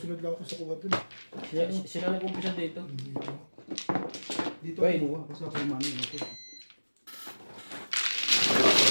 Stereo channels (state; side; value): inverted; both; correlation -1.00